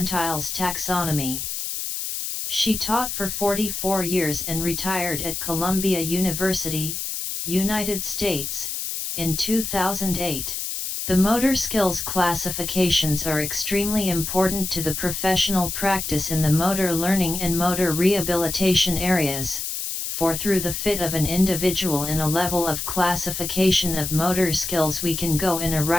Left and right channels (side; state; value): left; noise; hiss, 4 dB below the sound